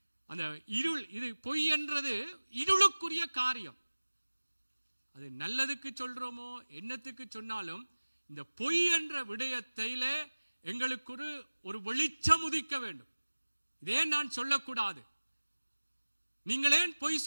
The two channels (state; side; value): inverted; both; correlation -1.00